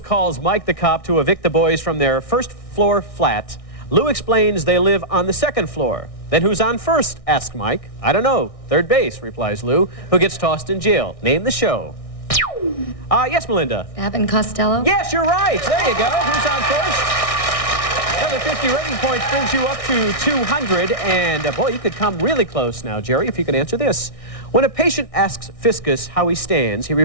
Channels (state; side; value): late; right; 1.6 ms